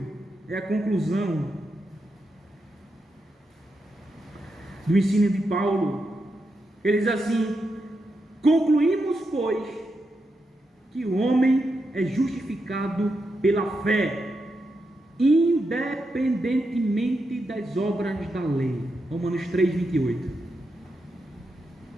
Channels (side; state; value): both; normal; correlation 0.85